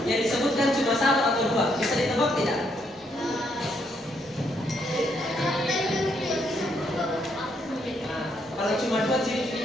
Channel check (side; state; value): both; normal; correlation 0.74